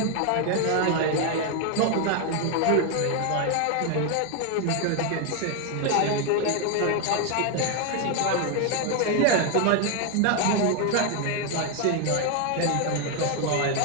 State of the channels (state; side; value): different; both; correlation 0.01